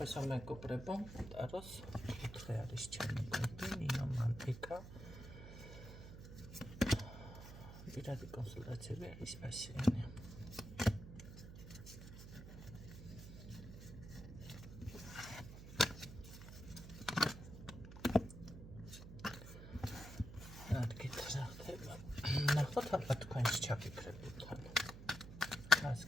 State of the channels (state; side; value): noise; right; hum, 12 dB below the sound